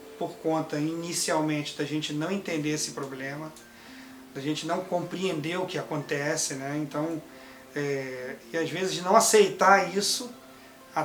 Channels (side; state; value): both; identical; correlation 1.00